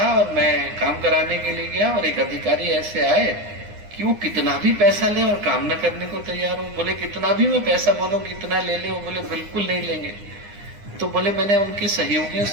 और मैं काम कराने के लिए गया और एक अधिकारी ऐसे आए कि वो कितना भी पैसा ले और काम न करने को तैयार हो। बोले कितना भी मैं पैसा बोलूं कितना ले लें, बोले बिल्कुल नहीं लेंगे। तो बोले मैंने उनके सहयोगियों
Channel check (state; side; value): late; left; 9.7 ms